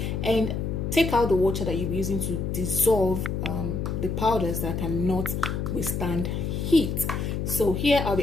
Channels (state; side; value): noise; left; hum, 2 dB below the sound